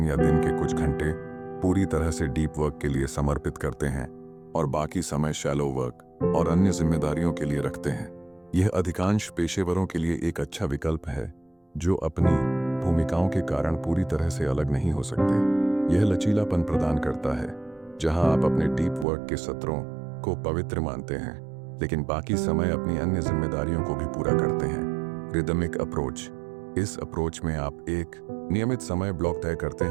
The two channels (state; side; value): drops out; left; at 19.1 s